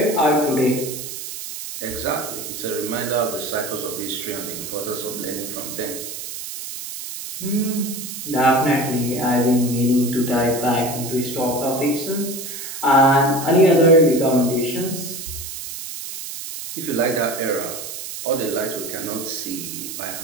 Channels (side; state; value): right; noise; hiss, 8 dB below the sound